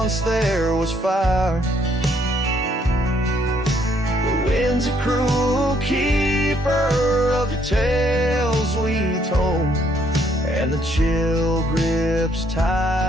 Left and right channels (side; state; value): both; normal; correlation 0.68